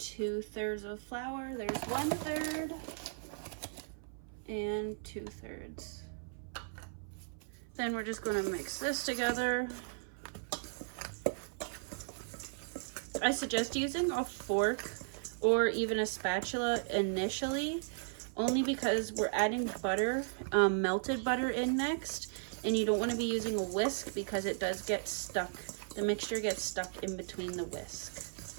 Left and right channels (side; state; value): left; silent; 54 dB below the other